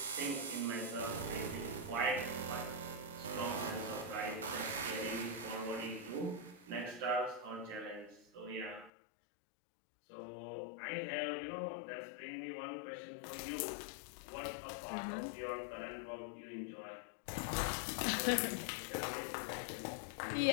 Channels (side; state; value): right; drops out; at 8.9 s